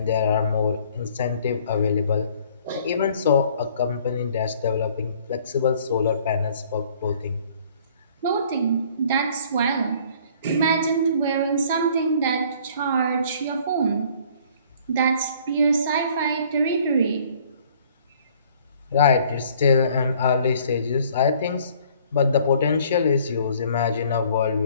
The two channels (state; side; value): inverted; both; correlation -0.56